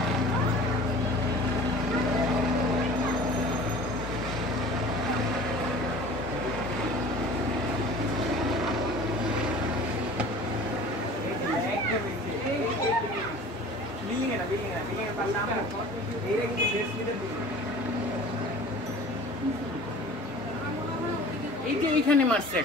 এই যে এইখানে মারছে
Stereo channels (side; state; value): both; normal; correlation 0.43